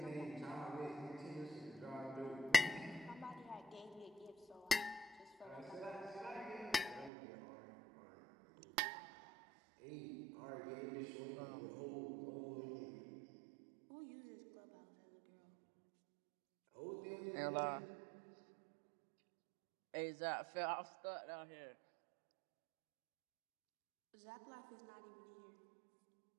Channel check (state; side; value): drops out; left; at 7.1 s